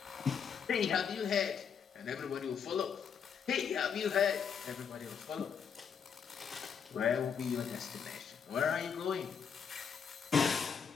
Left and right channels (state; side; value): quieter; right; 7.0 dB